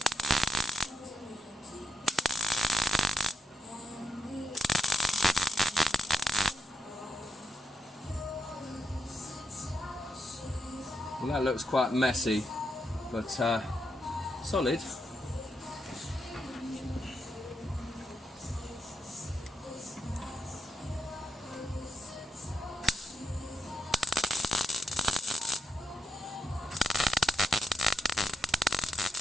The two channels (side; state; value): both; normal; correlation 0.83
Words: Well, that looks quite messy, but solid.